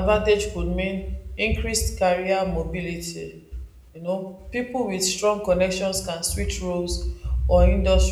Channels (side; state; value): both; identical; correlation 1.00